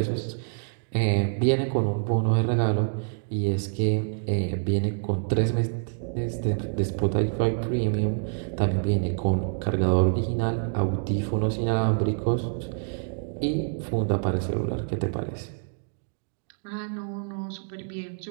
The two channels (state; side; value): silent; left; digital silence